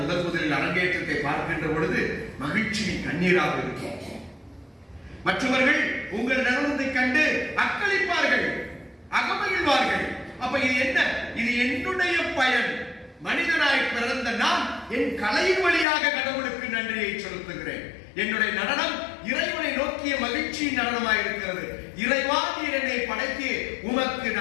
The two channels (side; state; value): right; drops out; at 15.9 s